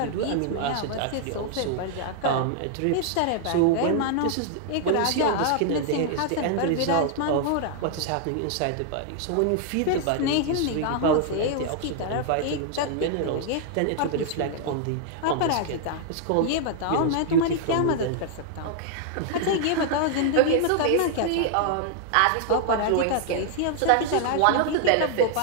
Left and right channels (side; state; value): both; different; correlation 0.00